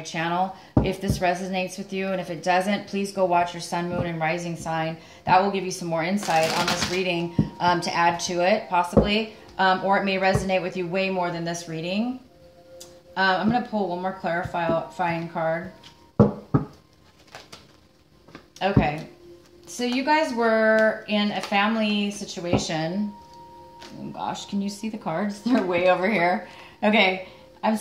channel if this resonates with you. And if it doesn't, please go watch your sun, moon, and rising sign. That will give you some more insight on this reading to add to it, possibly. Or it may resonate with you way more than this reading. I'm going to pull one more clarifying card. Okay. So you guys were in a family situation. Oh gosh, can you see the cards? They're way over here. Okay, I'm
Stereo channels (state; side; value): identical; both; correlation 1.00